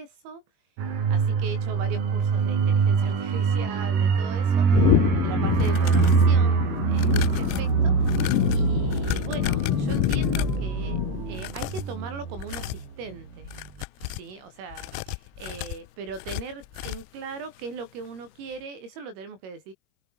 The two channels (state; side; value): late; left; 21 ms